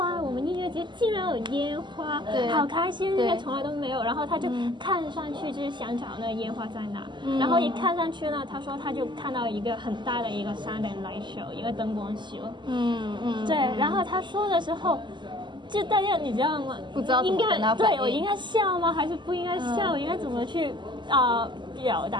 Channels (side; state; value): left; late; 0.22 ms